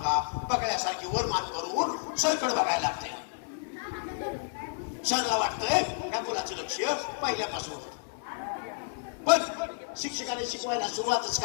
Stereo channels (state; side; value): silent; right; 57 dB below the other